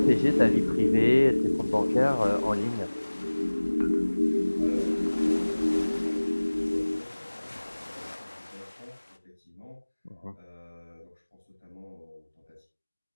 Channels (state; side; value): inverted; both; correlation -1.00